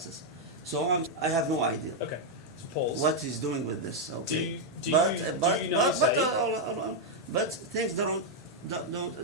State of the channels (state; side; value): normal; both; correlation -0.01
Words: so I have no idea. Okay. So pause. What he's doing with this? Okay, Do you not say- but things don't